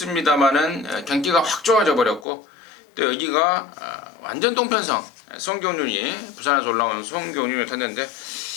경기가 확 좋아져 버렸고 또 여기가 완전 동편성 송경윤이 부산에서 올라온 송경윤을 탔는데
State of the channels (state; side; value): drops out; right; at 2.2 s